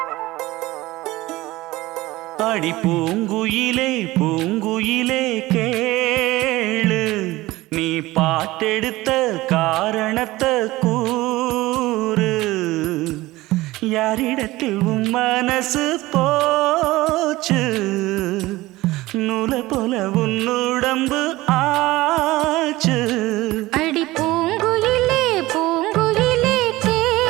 அடி பூங்குயிலே பூங்குயிலே கேளு நீ பாட்டெடுத்த காரணத்தை கூறு யாரிடத்தில் உன் மனசு போச்சு நூல போல உன் உடம்பு ஆச்சு அடி பூங்குயிலே பூங்குயிலே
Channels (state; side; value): quieter; left; 18.7 dB